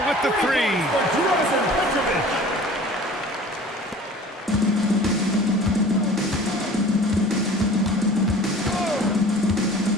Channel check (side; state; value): both; normal; correlation 0.44